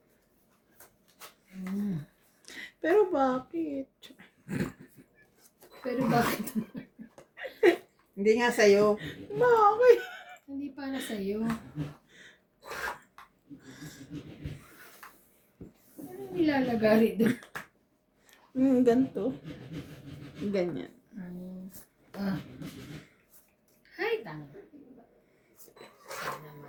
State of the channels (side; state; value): both; identical; correlation 1.00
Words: Pero bakit? Pero bakit? Hindi nga sa'yo. Bakit? Hindi para sa'yo. Anong nilalagari doon? Ganito. Ganyan. Hay, tanga. Sana